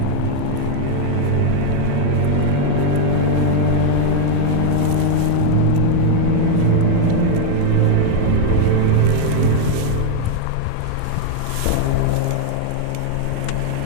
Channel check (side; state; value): both; different; correlation 0.00